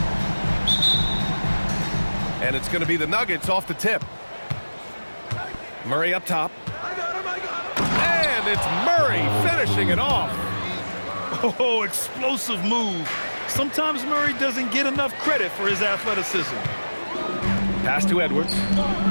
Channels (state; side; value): inverted; both; correlation -1.00